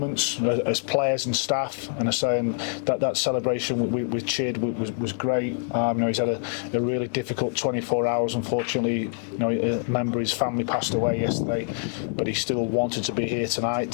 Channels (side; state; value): right; silent; digital silence